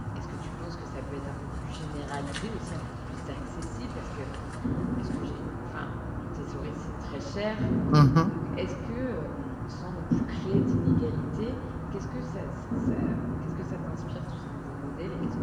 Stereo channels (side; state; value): both; identical; correlation 1.00